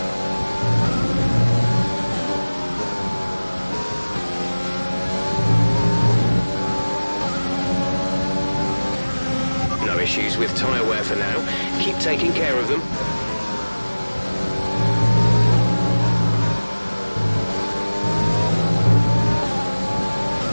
Issues with tyre wear for now. Keep taking care of them.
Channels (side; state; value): both; inverted; correlation -1.00